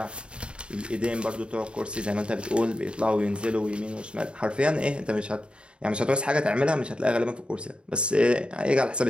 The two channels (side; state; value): left; late; 0.054 ms